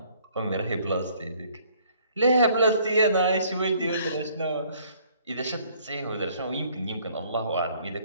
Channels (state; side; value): inverted; both; correlation -0.61